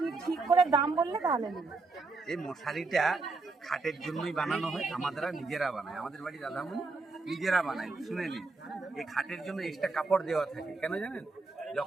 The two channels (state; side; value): quieter; left; 3.7 dB